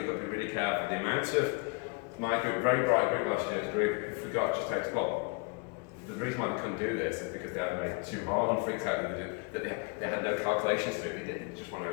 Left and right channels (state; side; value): quieter; right; 33.2 dB